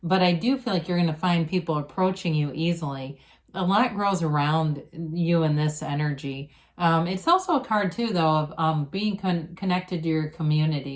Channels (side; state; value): both; identical; correlation 1.00